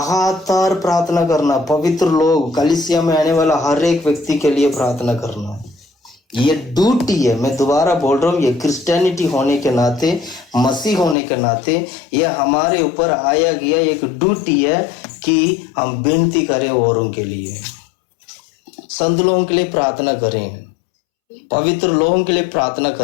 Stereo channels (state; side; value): drops out; right; at 11.2 s